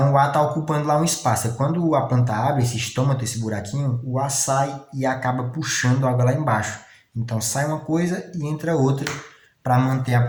o ar está ocupando lá um espaço. Quando a planta abre esse estômago, esse buraquinho, o ar sai e acaba puxando a água lá embaixo. Então sai uma coisa e entra outra para manter a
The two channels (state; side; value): identical; both; correlation 1.00